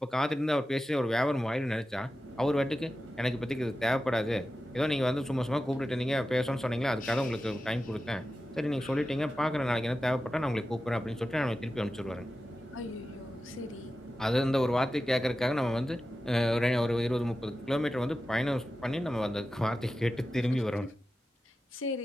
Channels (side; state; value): both; normal; correlation 0.93